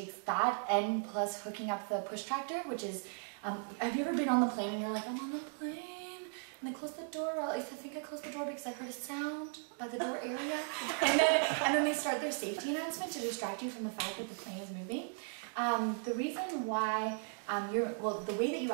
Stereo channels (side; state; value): left; silent; 53 dB below the other